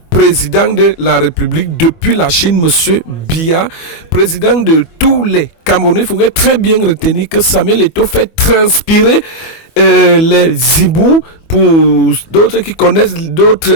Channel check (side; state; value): right; late; 24 ms